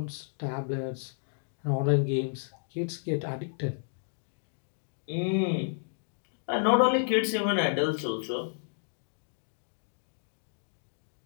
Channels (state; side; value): silent; right; digital silence